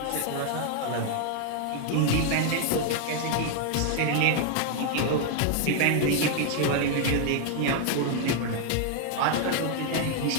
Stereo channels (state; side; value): different; both; correlation 0.00